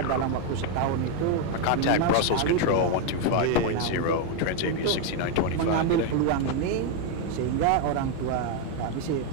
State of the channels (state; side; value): different; both; correlation 0.01